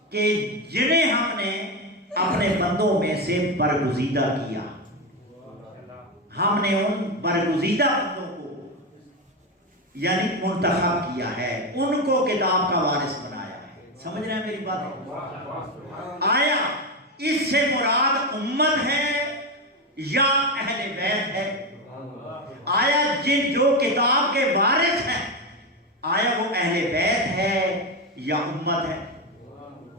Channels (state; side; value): normal; both; correlation 0.13